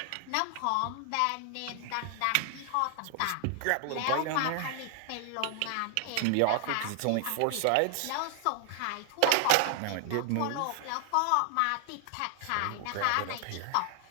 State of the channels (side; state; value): both; different; correlation 0.00